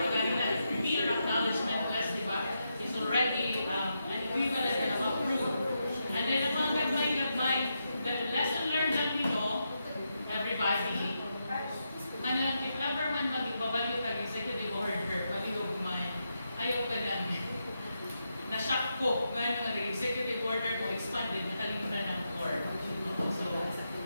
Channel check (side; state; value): both; inverted; correlation -0.85